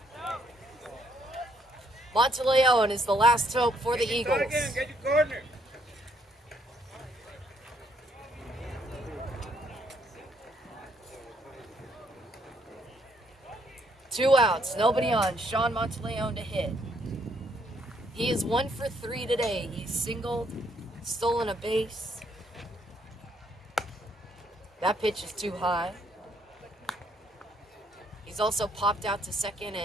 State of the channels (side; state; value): both; normal; correlation 0.70